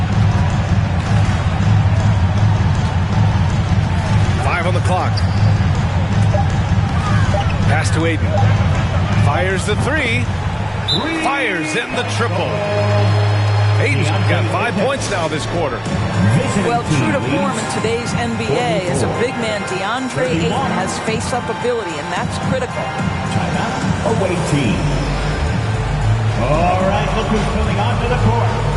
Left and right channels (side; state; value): both; identical; correlation 1.00